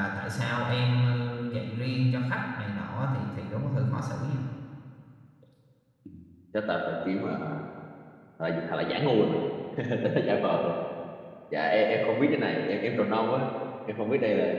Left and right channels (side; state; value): both; identical; correlation 1.00